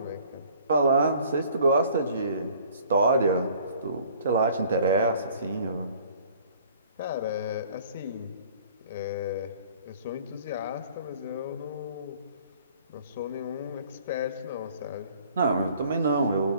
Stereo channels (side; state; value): both; inverted; correlation -0.53